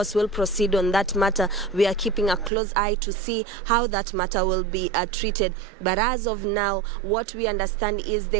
will proceed on that matter. We are keeping a close eye to see how that matter will be treated. But as of now, what we understand is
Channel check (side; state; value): left; drops out; at 2.5 s